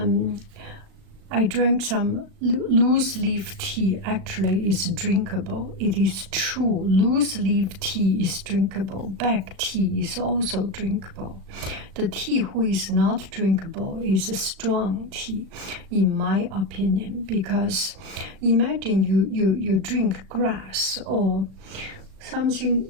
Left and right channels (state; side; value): late; left; 37 ms